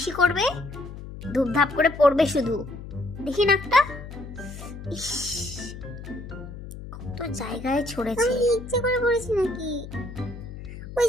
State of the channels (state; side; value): noise; left; hum, 12 dB below the sound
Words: করবে, ধূপধাপ করে পড়বে শুধু। দেখি নাকটা। ইস, কত জায়গায় ছড়েছে। আমি ইচ্ছে করে পড়েছি নাকি? ওই